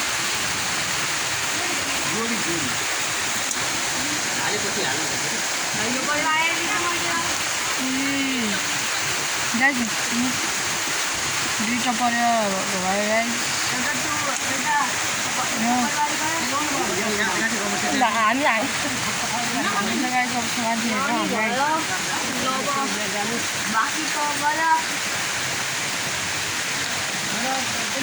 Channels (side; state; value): both; identical; correlation 1.00